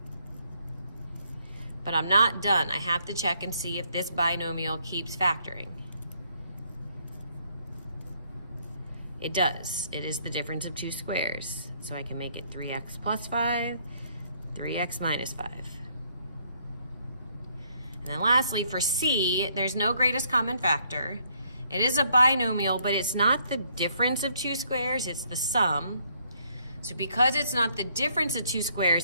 But I'm not done. I have to check and see if this binomial keeps factoring. It does. It is the difference of two squares. So I can make it 3x plus 5, 3x minus 5. And then lastly, for C, there's no greatest common factor. It is a binomial, but it's not the difference of two squares, it's the sum. So because it's not the difference of two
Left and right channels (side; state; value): both; inverted; correlation -0.69